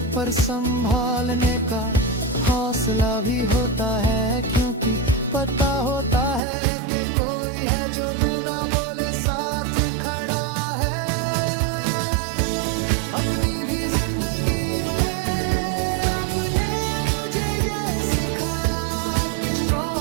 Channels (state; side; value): drops out; left; at 6.4 s